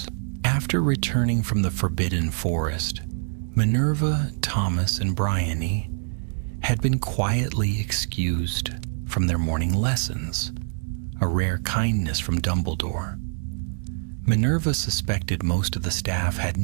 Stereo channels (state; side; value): silent; left; digital silence